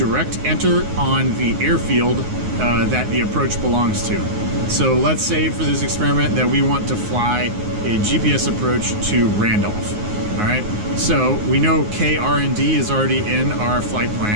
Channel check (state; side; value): late; left; 9.5 ms